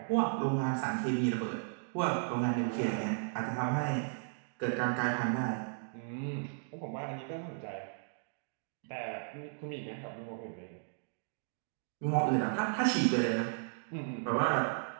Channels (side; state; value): left; silent; digital silence